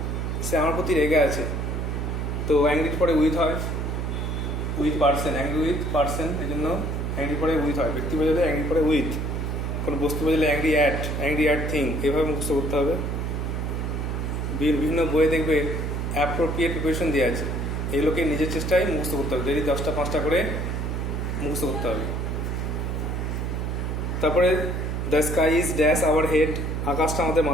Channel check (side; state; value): right; noise; hum, 1 dB below the sound